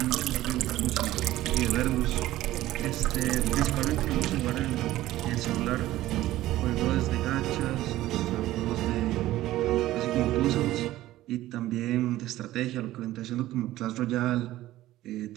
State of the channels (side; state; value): left; quieter; 15.4 dB